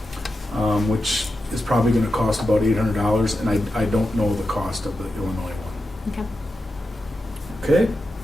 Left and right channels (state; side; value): normal; both; correlation 0.90